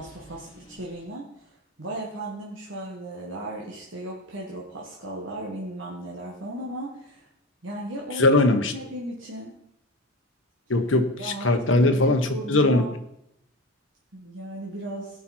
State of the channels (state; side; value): normal; both; correlation 0.25